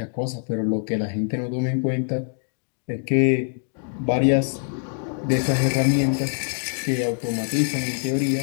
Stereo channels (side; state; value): right; silent; 63 dB below the other